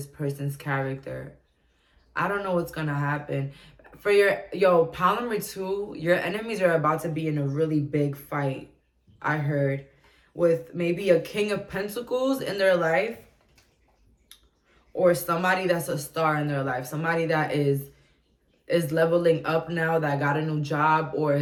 person's character. I don't know what's going to happen. For pile number 2, your enemies are about to be in a really big fight, I heard. With maybe a King of Pentacles in their life, or somebody that's a star in their life, somebody that is leveling up now, that got a new job or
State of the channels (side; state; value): both; identical; correlation 1.00